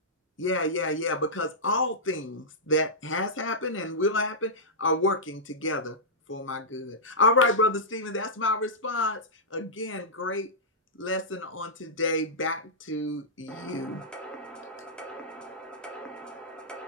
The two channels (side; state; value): both; normal; correlation -0.13